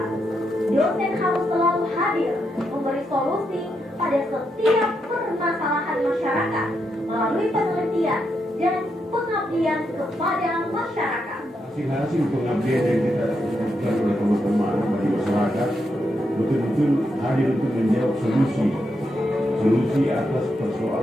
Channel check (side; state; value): both; normal; correlation 0.82